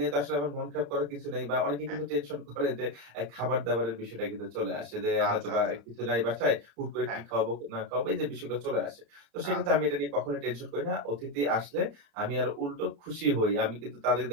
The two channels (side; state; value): left; late; 35 ms